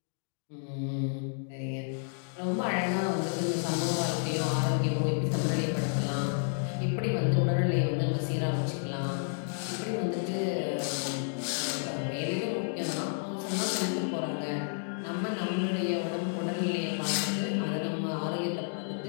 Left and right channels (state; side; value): silent; right; digital silence